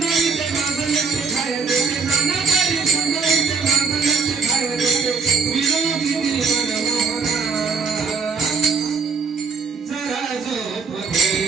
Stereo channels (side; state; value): left; quieter; 4.8 dB